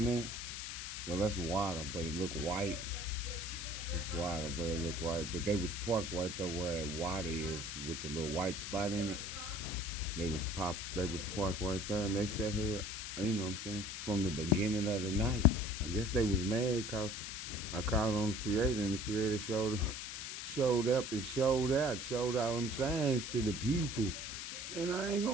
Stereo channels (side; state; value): left; noise; hiss, 6 dB below the sound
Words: there. Well, that's water, but it looked white. It's water, but it looked white. But they was parked right there where water is with the little white spot in it. They was parked right there, and they sat here, you know what I'm saying, from the beginning of the night. I guess they was mad because I called on the creator, and the creator showed up and showed all them signs to the people. And I ain't